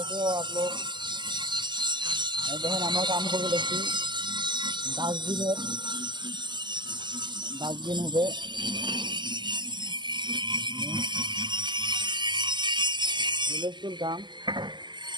हो आप लोग। দেখেন আমরা কাম করবো দেখছি ডাস্টবিন হবে হুলস্থুল কাম।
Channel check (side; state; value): left; late; 0.22 ms